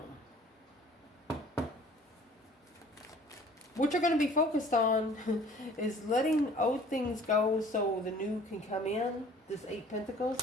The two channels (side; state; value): both; normal; correlation 0.51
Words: What you're going to be focused on is letting old things go so the new can come in. This 8